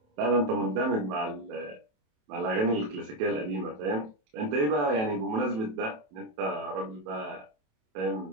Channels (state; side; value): late; left; 27 ms